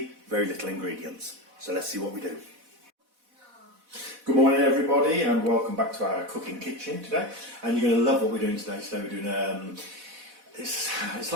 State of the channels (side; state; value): left; late; 4.1 ms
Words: very little ingredients. So let's see what we do. Good morning everybody, and welcome back to our cooking kitchen today. And you're going to love what we're doing today. Today we're doing, it's